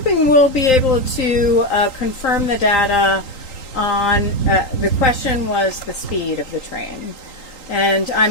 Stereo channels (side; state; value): right; late; 3.8 ms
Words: we'll be able to confirm the data on, the question was the speed of the train. And